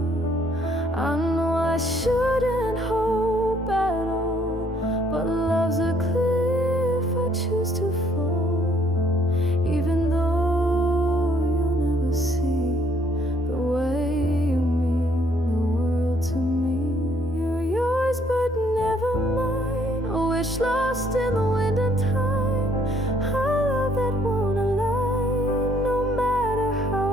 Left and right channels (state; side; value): normal; both; correlation 0.65